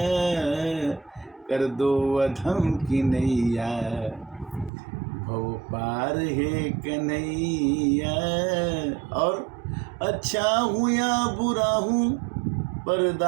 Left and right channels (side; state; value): left; drops out; at 4.7 s